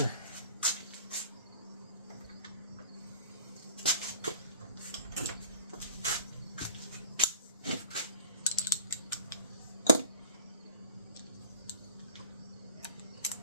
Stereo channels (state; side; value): inverted; both; correlation -0.46